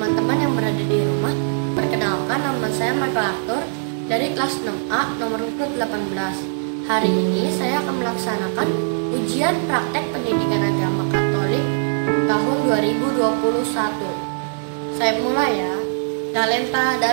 yang berada di rumah. Perkenalkan, nama saya Michael Arthur dari kelas 6A nomor urut 18. Hari ini saya akan melaksanakan ujian praktek pendidikan agama Katolik tahun 2021. Saya mulai ya. Talenta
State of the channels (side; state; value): left; silent; digital silence